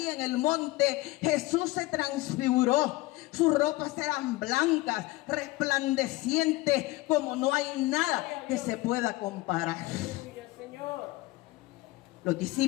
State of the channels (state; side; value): quieter; right; 19.4 dB